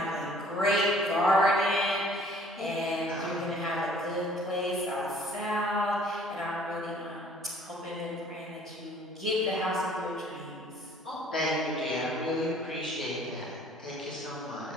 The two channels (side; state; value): both; normal; correlation 0.55